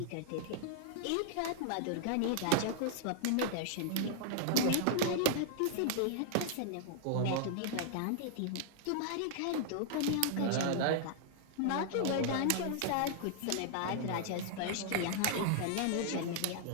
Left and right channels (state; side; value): different; both; correlation -0.01